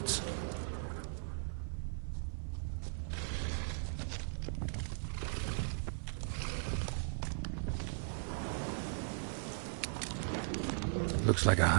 Looks like a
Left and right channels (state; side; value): silent; left; 52 dB below the other